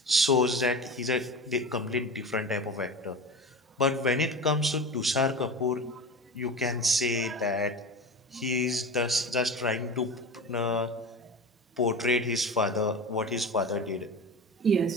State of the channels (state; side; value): normal; both; correlation 0.30